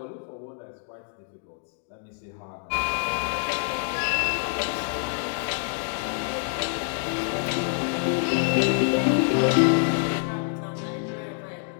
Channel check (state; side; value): silent; right; digital silence